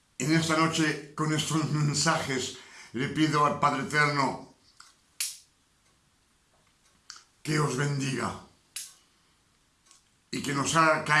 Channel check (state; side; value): identical; both; correlation 1.00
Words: En esta noche, con estos mensajes, le pido al Padre Eterno que os bendiga y que nos haga